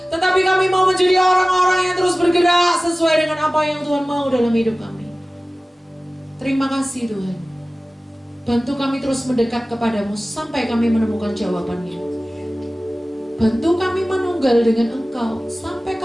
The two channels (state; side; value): normal; both; correlation 0.97